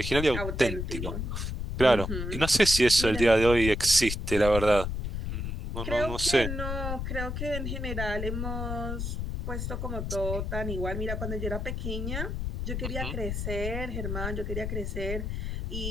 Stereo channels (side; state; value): left; noise; rumble, 3 dB below the sound